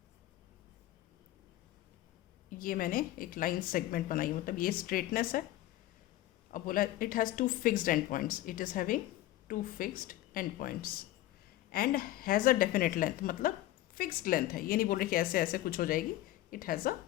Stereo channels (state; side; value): quieter; right; 15.3 dB